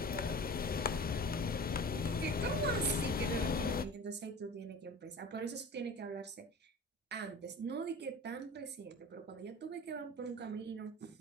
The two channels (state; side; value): normal; both; correlation 0.37